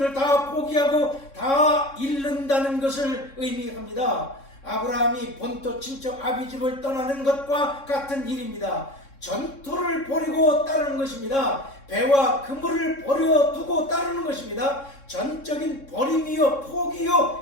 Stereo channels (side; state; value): right; late; 3.6 ms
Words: 다 포기하고 다 잃는다는 것을 의미합니다. 아브라함이 본토 친척 아비집을 떠나는 것과 같은 일입니다. 전토를 버리고 따르는 것입니다. 배와 그물을 버려두고 따르는 것입니다. 전적인 버림이요